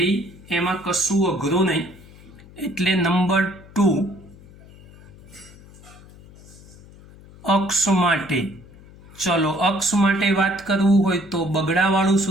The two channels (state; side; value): noise; left; hum, 22 dB below the sound